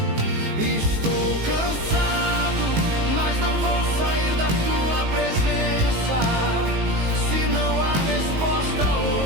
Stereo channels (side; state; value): left; late; 19 ms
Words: Estou cansado, mas não vou sair da tua presença. Se não há resposta